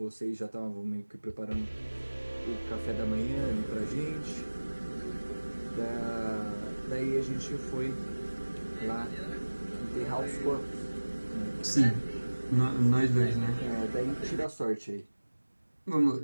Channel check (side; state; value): both; inverted; correlation -1.00